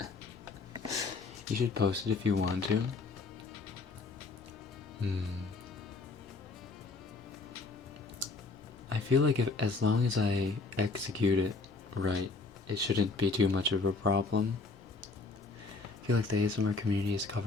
You should post it if you want to. I feel like as long as I execute it right, it shouldn't be too much of a problem. I feel like the ASMR community has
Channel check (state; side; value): quieter; right; 3.8 dB